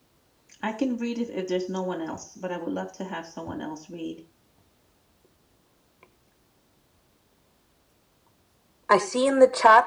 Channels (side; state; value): both; identical; correlation 1.00